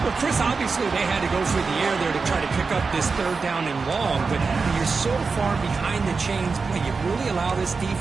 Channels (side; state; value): left; quieter; 4.6 dB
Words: Well, Chris, obviously they had to go through the air there to try to pick up this third down and long, but when you're so far behind the chains, boy, you really allow this